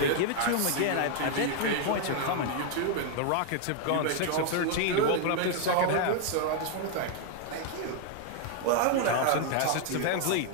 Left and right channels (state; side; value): different; both; correlation 0.00